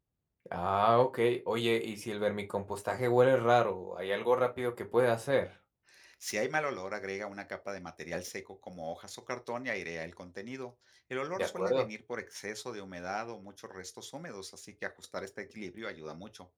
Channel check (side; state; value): both; identical; correlation 1.00